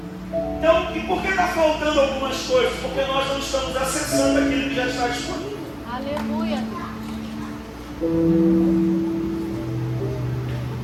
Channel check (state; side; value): identical; both; correlation 1.00